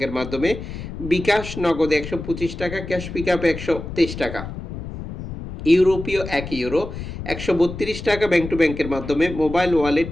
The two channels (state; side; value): noise; left; rumble, 9 dB below the sound